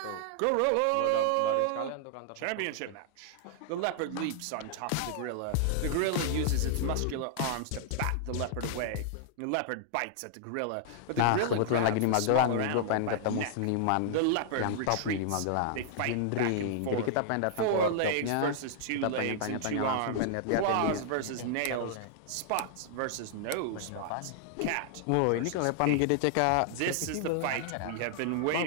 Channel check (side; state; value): both; different; correlation -0.01